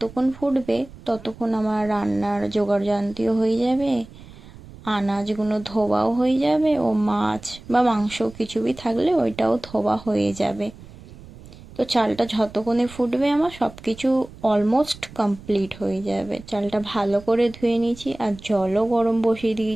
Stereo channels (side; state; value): right; noise; rumble, 19 dB below the sound